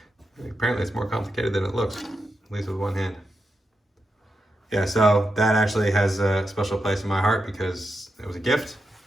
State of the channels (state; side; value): normal; both; correlation 0.87